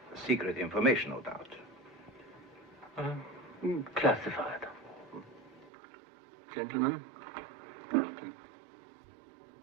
Secret information, no doubt. Classified. Gentlemen?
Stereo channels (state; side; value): drops out; left; at 5.7 s